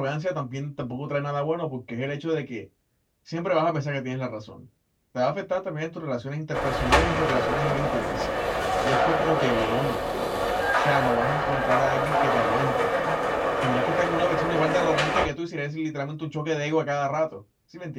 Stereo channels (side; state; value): both; identical; correlation 1.00